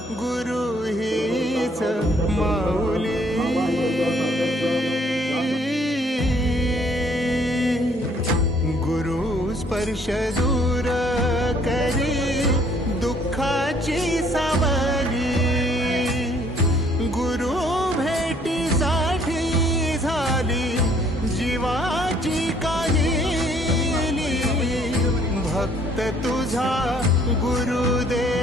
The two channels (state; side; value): normal; both; correlation 0.62